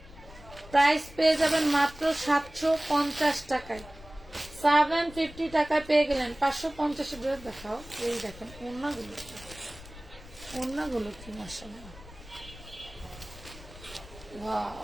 প্রাইস পেয়ে যাবেন মাত্র 750 টাকায়। 750 টাকায় পেয়ে গেলেন। 550 ড্রেস দেখাও। এই দেখেন ওড়নাগুলো, ওড়নাগুলো কি মাশাআল্লাহ, ওয়াও।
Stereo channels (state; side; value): noise; left; rumble, 18 dB below the sound